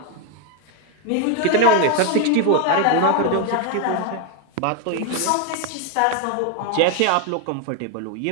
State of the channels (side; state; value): both; different; correlation 0.01